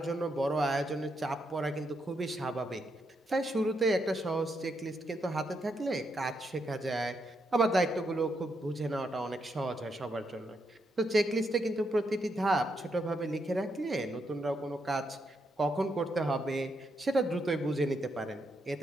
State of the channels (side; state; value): both; normal; correlation 0.80